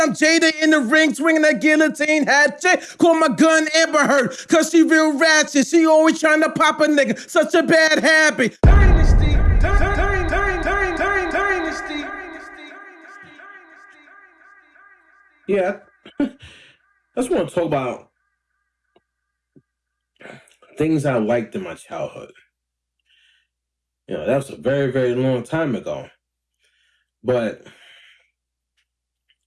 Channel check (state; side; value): identical; both; correlation 1.00